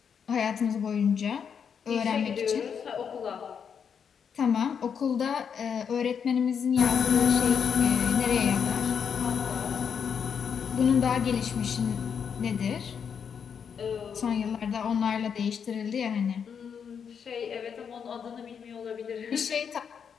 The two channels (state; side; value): quieter; right; 7.1 dB